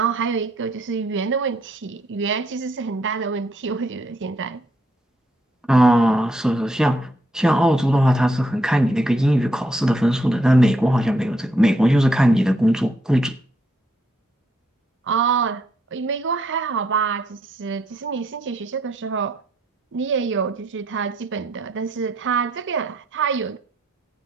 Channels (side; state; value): both; normal; correlation 0.74